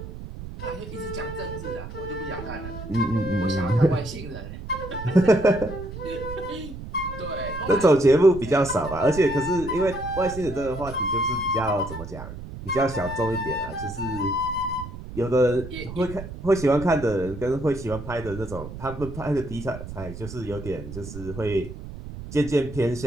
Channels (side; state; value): right; noise; rumble, 11 dB below the sound